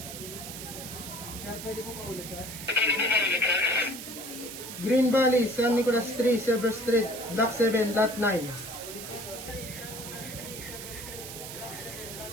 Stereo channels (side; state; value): right; noise; hiss, 10 dB below the sound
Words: Sir, pwede po paulit sir? Green Valley, San Nicolas Street, Silver Street, Block 7, Lot 9.